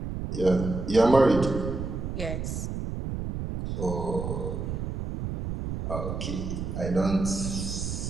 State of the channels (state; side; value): noise; right; rumble, 4 dB below the sound